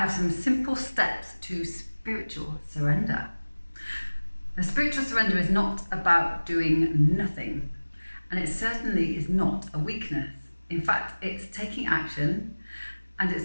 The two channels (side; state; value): both; inverted; correlation -1.00